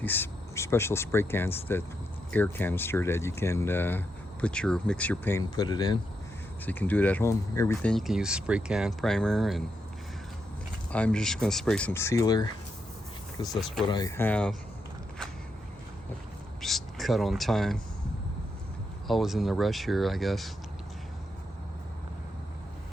these special spray cans, that air canister that you can mix your paint and put it in. So you can do it at home. Everything you can use spray can, primer, and I'm just gonna spray some sealer because that's what I have. Just cut on time. Always in the rush here, I guess.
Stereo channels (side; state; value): both; normal; correlation 0.82